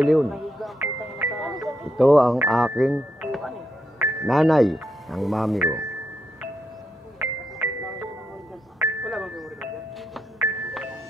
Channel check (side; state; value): both; normal; correlation 0.82